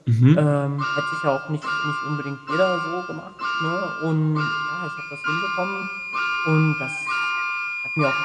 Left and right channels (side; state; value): both; identical; correlation 1.00